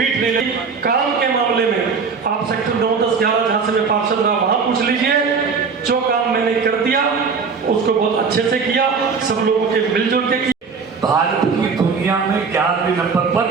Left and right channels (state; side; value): quieter; left; 5.3 dB